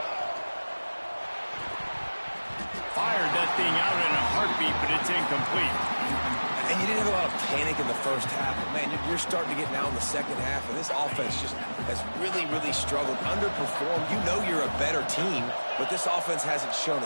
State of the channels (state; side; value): inverted; both; correlation -1.00